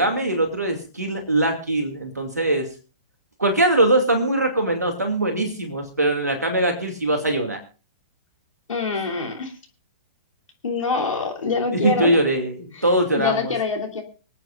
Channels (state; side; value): inverted; both; correlation -0.46